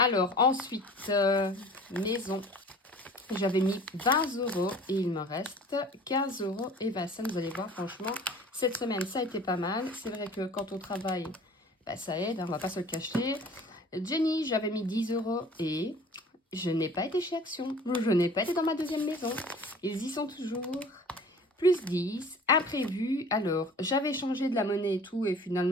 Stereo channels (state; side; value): normal; both; correlation 0.46